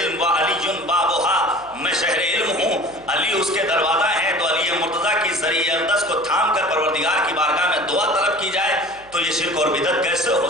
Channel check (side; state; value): right; noise; hum, 27 dB below the sound